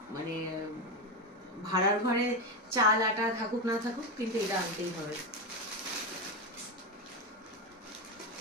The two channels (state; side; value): normal; both; correlation 0.12